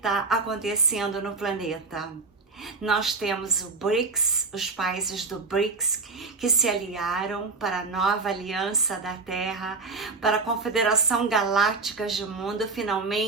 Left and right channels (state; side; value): quieter; left; 4.0 dB